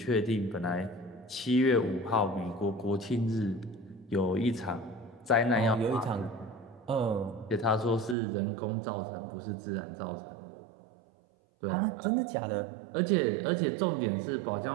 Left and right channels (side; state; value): left; drops out; at 8.2 s